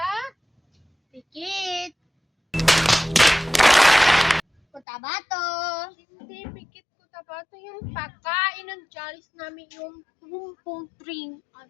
Pikit. Cotabato. hindi Pikit Cotabato, yung pagkain ng challenge namin yung pumpong string at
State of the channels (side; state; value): right; drops out; at 4.8 s